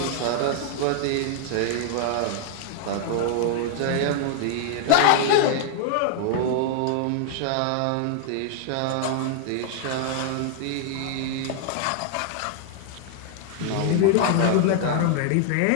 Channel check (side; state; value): both; different; correlation 0.00